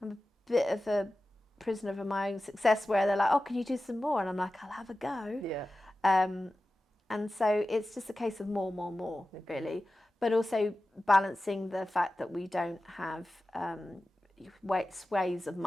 a bit of a prisoner of my own success where they're like, oh, can you do some more? And I'm like, I'll have a go. Yeah. And so it's just a case of more, really. But also balancing the fact that we don't have ways of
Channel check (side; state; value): both; normal; correlation 0.94